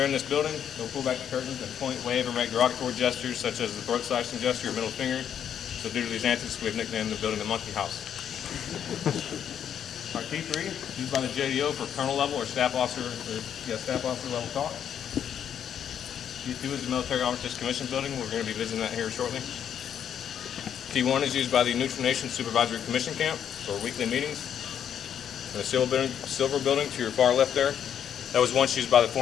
in this building, they'll pull back the curtains and point, wave, or make derogatory gestures such as the throat slashing gesture or middle finger. So due to these antics, we've nicknamed the building the Monkey House. Our T3 is used by the JDO for colonel level or staff officer level talk. T2 is the Military Armistice Commission building. We're going to be visiting that here shortly. T1 is used by the Neutral Nations Supervisory Commission camp for weekly meetings. And the silver building to your far left there, that was once used by the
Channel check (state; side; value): quieter; right; 9.0 dB